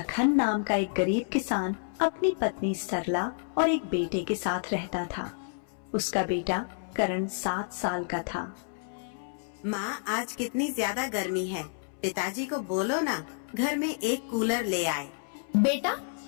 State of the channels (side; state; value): right; silent; 58 dB below the other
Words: नाम का एक गरीब किसान अपनी पत्नी सरला और एक बेटे के साथ रहता था। उसका बेटा करण 7 साल का था। माँ, आज कितनी ज्यादा गर्मी है, पिताजी को बोलो ना घर में एक कूलर ले आए। बेटा,